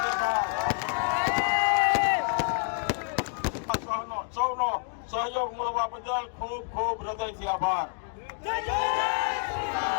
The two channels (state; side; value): silent; right; 59 dB below the other